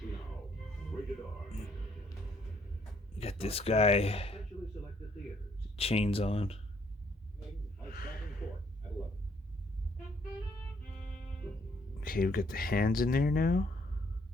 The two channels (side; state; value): both; normal; correlation 0.67